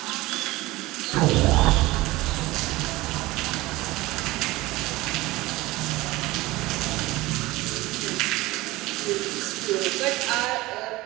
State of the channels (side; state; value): left; quieter; 19.6 dB